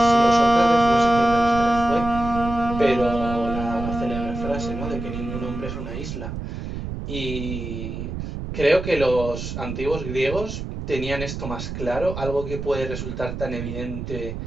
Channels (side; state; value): right; noise; rumble, 7 dB below the sound